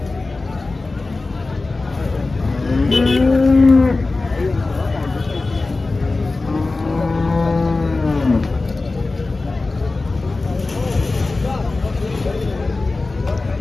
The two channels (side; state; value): right; quieter; 3.4 dB